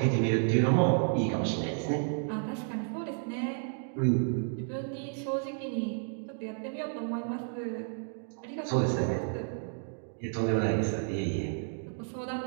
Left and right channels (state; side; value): silent; left; 57 dB below the other